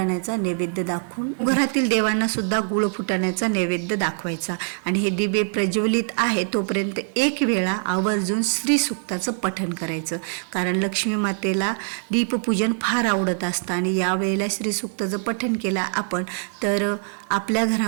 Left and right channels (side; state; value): left; silent; digital silence